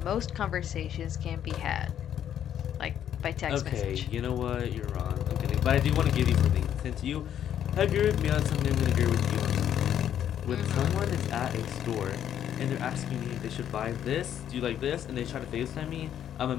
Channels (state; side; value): quieter; right; 10.0 dB